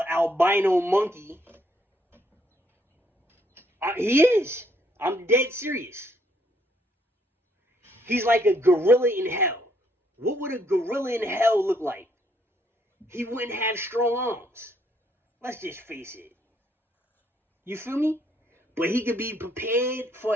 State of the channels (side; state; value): both; normal; correlation 0.70